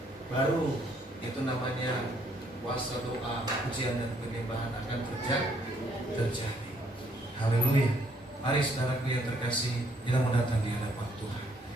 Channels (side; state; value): both; normal; correlation 0.68